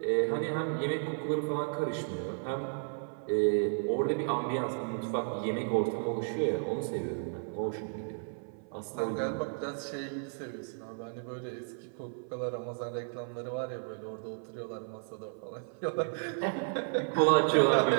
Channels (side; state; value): left; silent; 56 dB below the other